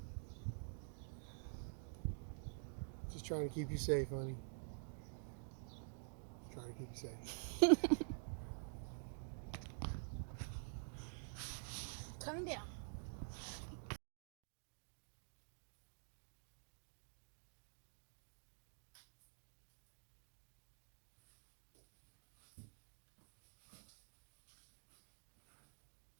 Just trying to keep you safe, honey. Just trying to keep you safe. Coming down.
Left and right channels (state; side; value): silent; left; digital silence